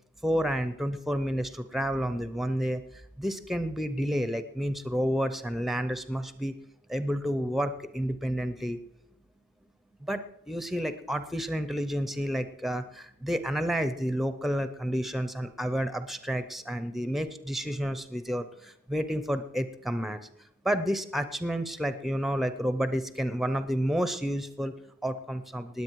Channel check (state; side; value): normal; both; correlation 0.90